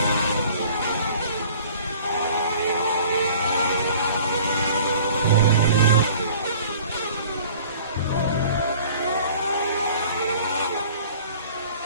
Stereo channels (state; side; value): inverted; both; correlation -0.48